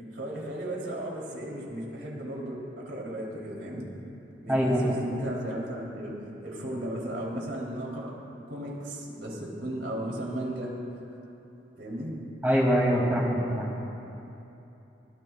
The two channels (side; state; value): both; normal; correlation 0.75